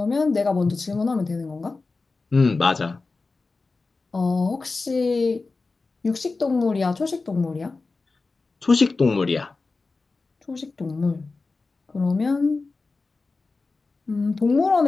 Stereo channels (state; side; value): quieter; right; 3.8 dB